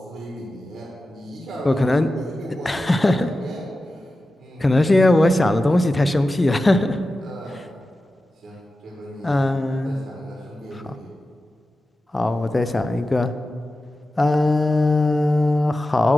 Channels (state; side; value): normal; both; correlation 0.93